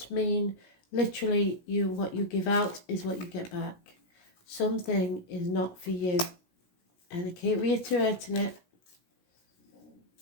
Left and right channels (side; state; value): right; late; 16 ms